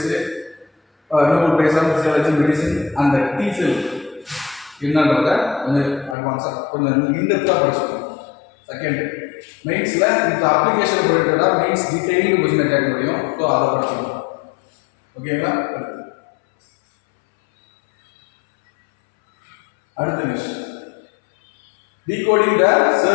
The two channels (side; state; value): right; drops out; at 6.2 s